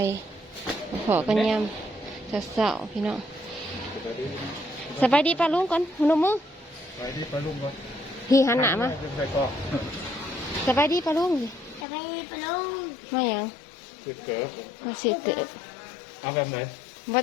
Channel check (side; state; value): right; drops out; at 11.9 s